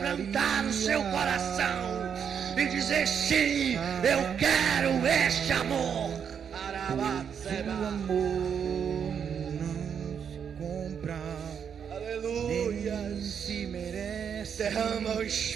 o seu coração e dizer: sim, eu quero este amor. O amor não se compra. Aleluia. Se merece. Derrama o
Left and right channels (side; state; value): left; quieter; 7.5 dB